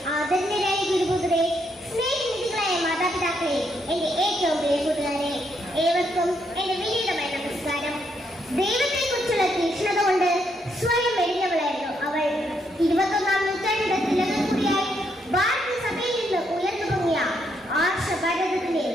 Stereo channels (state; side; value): normal; both; correlation 0.76